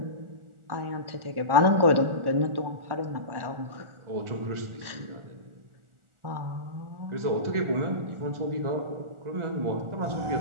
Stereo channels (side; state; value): left; late; 1.4 ms